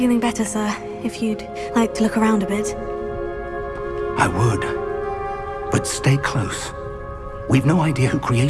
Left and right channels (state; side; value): identical; both; correlation 1.00